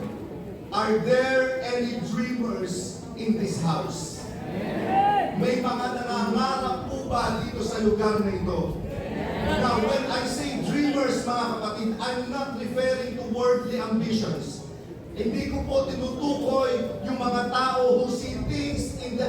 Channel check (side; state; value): both; identical; correlation 1.00